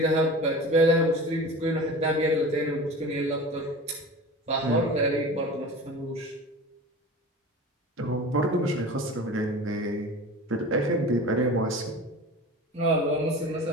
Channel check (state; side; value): normal; both; correlation 0.35